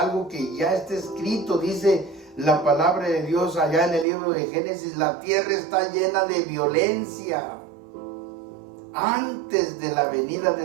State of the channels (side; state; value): left; drops out; at 4.0 s